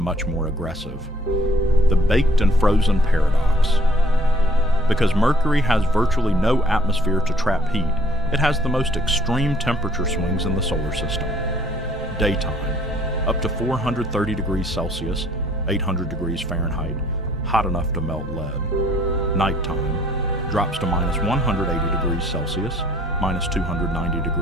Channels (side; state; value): both; normal; correlation 0.59